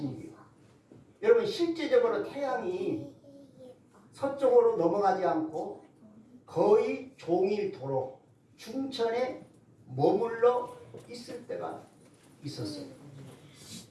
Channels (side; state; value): both; identical; correlation 1.00